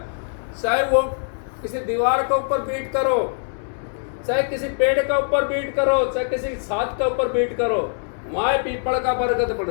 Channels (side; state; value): right; silent; 62 dB below the other